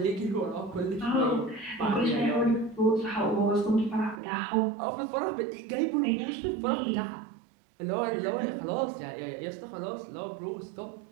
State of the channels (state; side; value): drops out; left; at 4.2 s